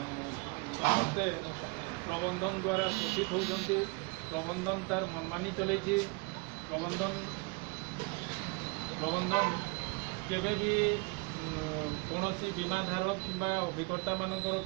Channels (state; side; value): quieter; left; 30.2 dB